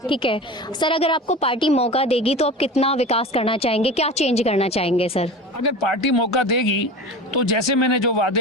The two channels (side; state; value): both; normal; correlation 0.32